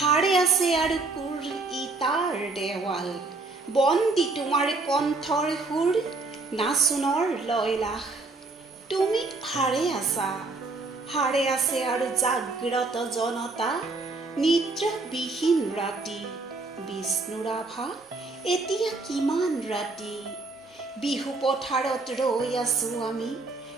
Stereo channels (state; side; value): quieter; left; 3.5 dB